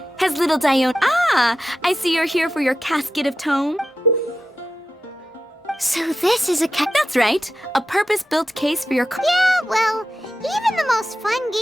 Has little Dione... Ah, I see you're here for your casket of tome. So this is a That's right. A purpose-built case for your... Yeah, well, even the most fun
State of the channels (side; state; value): both; normal; correlation 0.90